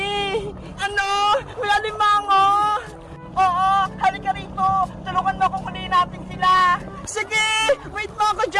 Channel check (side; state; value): both; identical; correlation 1.00